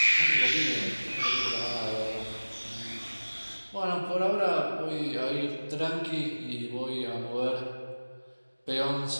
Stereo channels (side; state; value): both; inverted; correlation -1.00